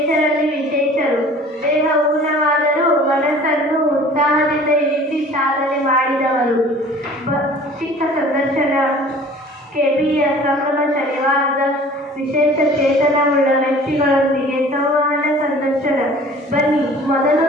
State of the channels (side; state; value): both; normal; correlation 0.47